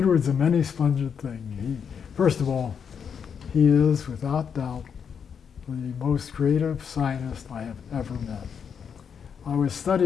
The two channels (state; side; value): quieter; right; 7.0 dB